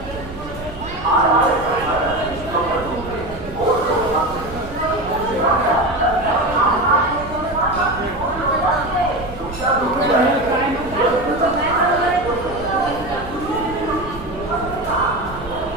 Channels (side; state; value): right; noise; rumble, 13 dB below the sound